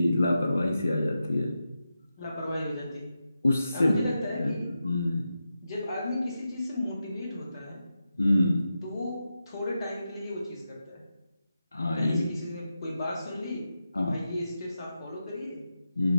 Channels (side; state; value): both; inverted; correlation -0.89